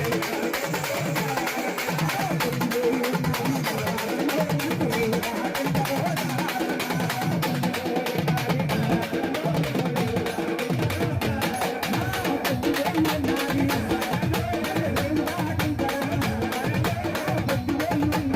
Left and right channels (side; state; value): both; identical; correlation 1.00